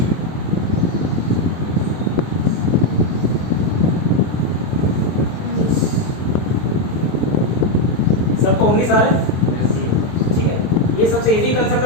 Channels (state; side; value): late; right; 24 ms